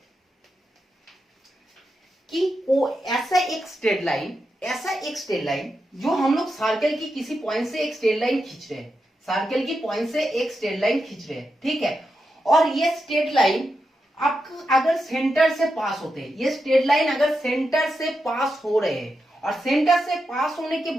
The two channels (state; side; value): normal; both; correlation 0.87